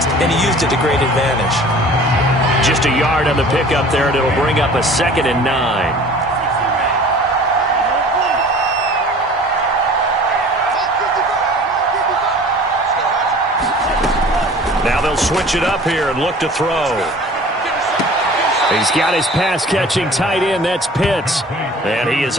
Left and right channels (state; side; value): normal; both; correlation 0.46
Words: and he used it to great advantage. Just a yard on the pickup there, and it'll bring up a 2nd and 9. Now they'll switch it up here and look to throw. He's got his pass-catching tight end. That's Pitts. And he